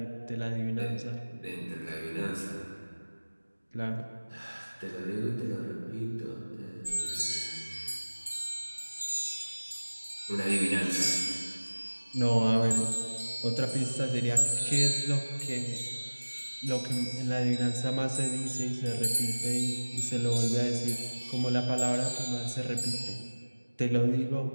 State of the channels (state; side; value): inverted; both; correlation -1.00